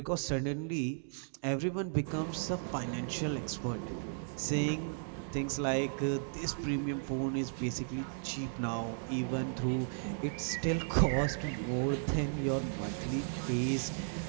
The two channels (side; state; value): left; silent; digital silence